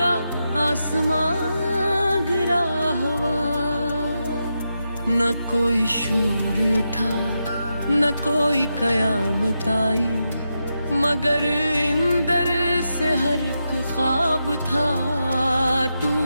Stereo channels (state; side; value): inverted; both; correlation -0.87